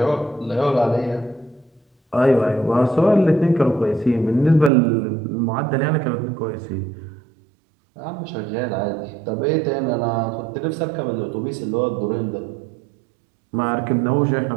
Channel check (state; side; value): drops out; left; at 4.7 s